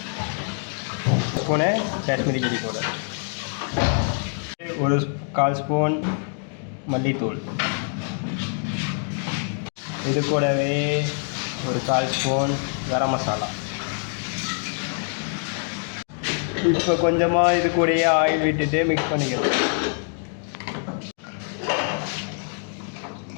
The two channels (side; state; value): right; silent; 55 dB below the other